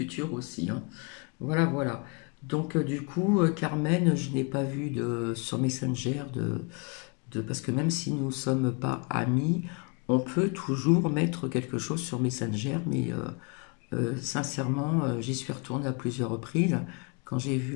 aussi, hein. Voilà, voilà. Donc, du coup, Carmen, je n'ai pas vu sur Messenger parce que même si nous ne sommes pas amis, on peut toujours mettre quelque chose sur Messenger, mais sincèrement, j'y suis retournée à plusieurs reprises quand j'ai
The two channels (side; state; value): right; quieter; 33.0 dB